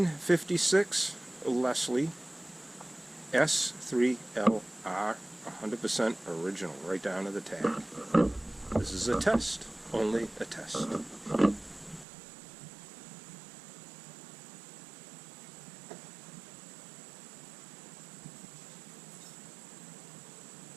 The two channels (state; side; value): drops out; left; at 12.1 s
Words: Leslie S-3L 100% original, right down to the tag. This is a test, only a test.